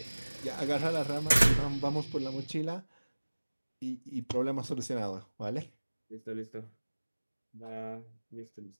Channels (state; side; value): inverted; both; correlation -1.00